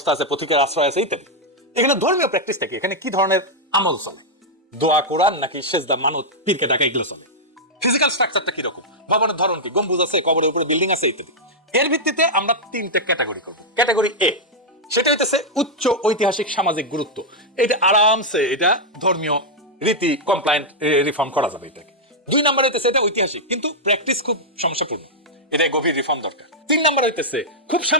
আছে, পথিকের আশ্রয় আছে ইত্যাদি। এখানে ধর্মীয় প্র্যাকটিসটা কি, এখানে কি ধরনের আমল চলে, দোয়া, কোরআন নাকি সেজদা, মানত, পীরকে ডাকা, এগুলো চলে। ফিজিক্যাল স্ট্রাকচারটা কি রকম, ভবনের ধরন কি, গম্বুজ আছে, কবরের উপরে বিল্ডিং আছে ইত্যাদি। এর ভিত্তিতে আমরা 3টা ক্যাটাগরি করব। ক্যাটাগরি এ, সেটা হইতেছে উচ্চ ঐতিহাসিক সামাজিক গুরুত্ব, এটা আরামসে এটা ধর্মীয় রীতি কমপ্লায়েন্ট রিফর্ম করা যাবে এটাকে। 2 নাম্বার হইতেছে এটা ঐতিহাসিক কিন্তু প্র্যাকটিস খুব সমস্যাপূর্ণ, এটা গভীর রিফর্ম দরকার। 3 নাম্বার হইতেছে খুব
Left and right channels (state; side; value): normal; both; correlation -0.05